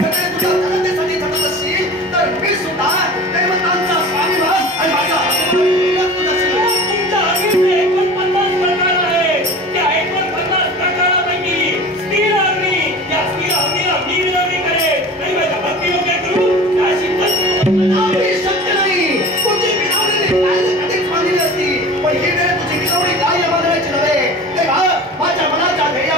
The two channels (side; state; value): both; normal; correlation 0.38